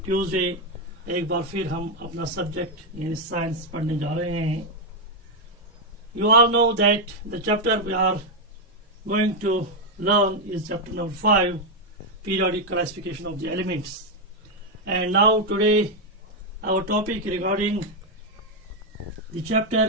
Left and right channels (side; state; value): both; normal; correlation 0.02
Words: ट्यूसडे एक बार फिर हम अपना सब्जेक्ट यानी साइंस पढ़ने जा रहे हैं. You all know that the chapter we are going to learn is chapter number 5, periodic classification of the elements. And now today our topic regarding the chapter